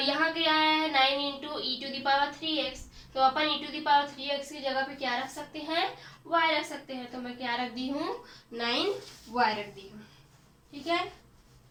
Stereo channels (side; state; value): both; identical; correlation 1.00